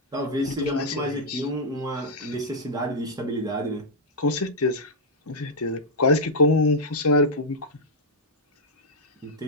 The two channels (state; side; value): normal; both; correlation -0.05